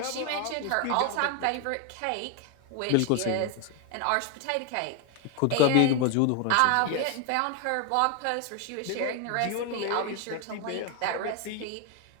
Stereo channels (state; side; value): different; both; correlation 0.01